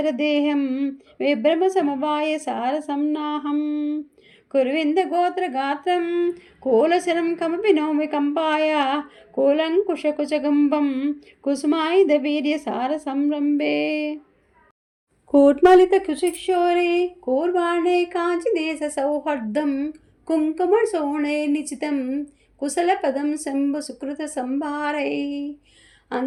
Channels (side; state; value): both; identical; correlation 1.00